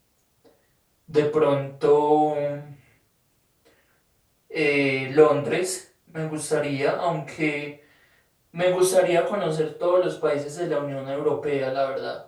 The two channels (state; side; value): identical; both; correlation 1.00